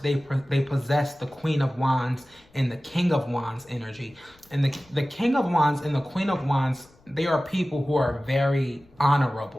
possess the Queen of Wands and the King of Wands energy. And the King of Wands and the Queen of Wands, they are people who are very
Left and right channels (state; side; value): noise; left; rumble, 30 dB below the sound